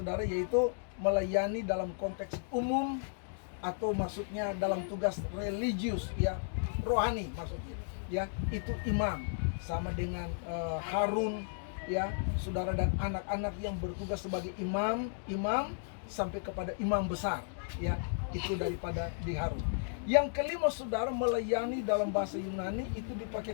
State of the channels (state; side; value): silent; right; digital silence